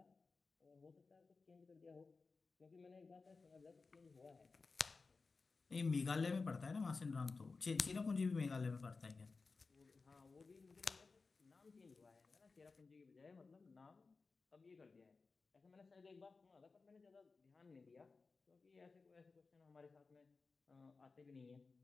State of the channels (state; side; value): quieter; right; 4.2 dB